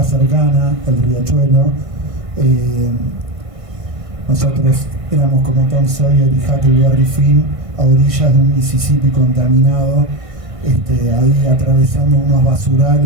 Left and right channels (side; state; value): left; late; 1.5 ms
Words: cercana, el riachuelo. Nosotros éramos como Tom Sawyer y Huckleberry Finn a orillas de un Mississippi contaminado, ahí atravesando unos